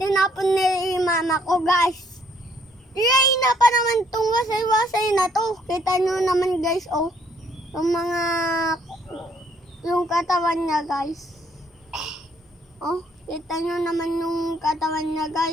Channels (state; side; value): normal; both; correlation 0.66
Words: ni mama ko guys. Yay na pa naman tong wasay-wasay na to. Kita nyo naman guys oh. Yung katawan niya guys. Oh, kita nyo naman yung katawan niya